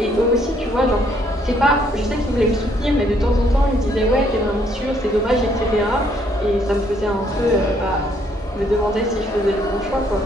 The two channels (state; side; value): normal; both; correlation 0.68